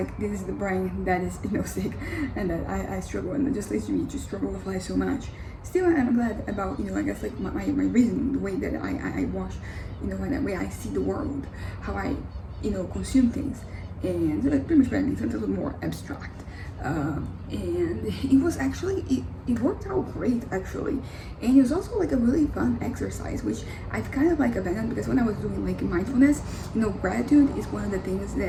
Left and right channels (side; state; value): both; identical; correlation 1.00